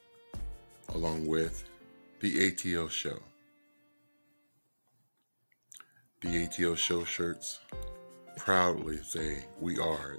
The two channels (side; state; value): both; inverted; correlation -1.00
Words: along with the A.T.L Show. The A.T.L Show shirts proudly say we are